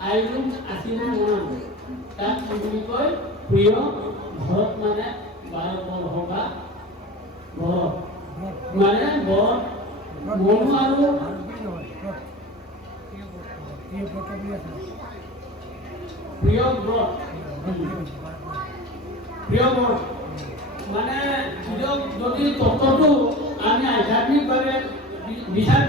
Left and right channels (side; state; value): both; normal; correlation 0.34